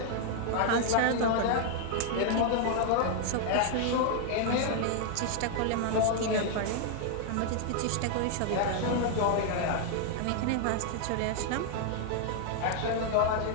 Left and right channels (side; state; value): both; different; correlation 0.00